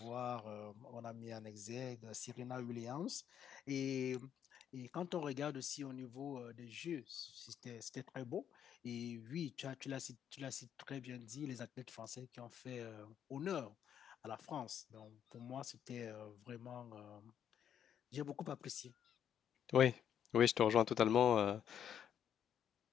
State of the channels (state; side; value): quieter; right; 9.2 dB